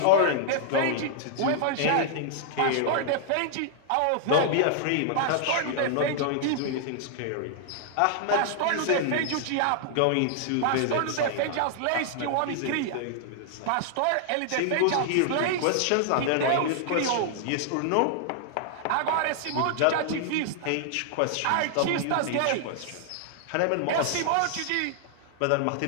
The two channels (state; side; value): different; both; correlation -0.01